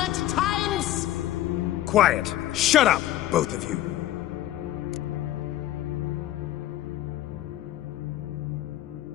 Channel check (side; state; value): right; quieter; 13.8 dB